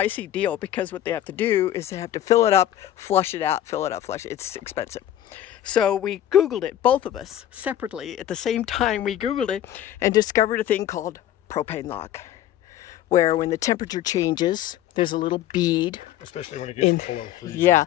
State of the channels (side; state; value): right; quieter; 12.2 dB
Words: deal, because what they have to do is they have to fill it up, flush it out, fill it up, flush it. It's expensive. So we Googled it, both of us, separately. At the same time, we Googled it and discovered a thing called propane lock, where when the temperature changes, there's a little bead. Especially when it gets below freezing. Yeah,